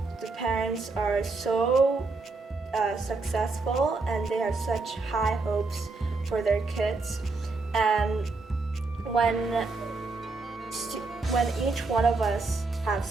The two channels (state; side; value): quieter; left; 3.7 dB